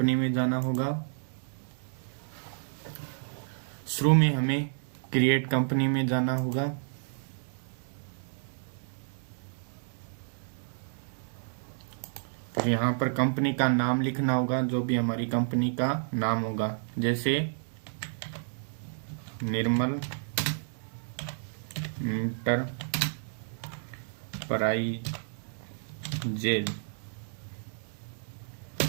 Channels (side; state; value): left; silent; digital silence